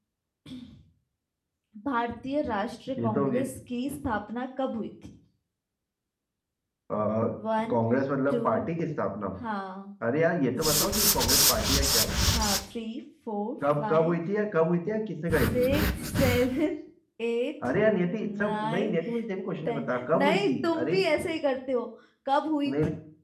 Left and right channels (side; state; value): both; identical; correlation 1.00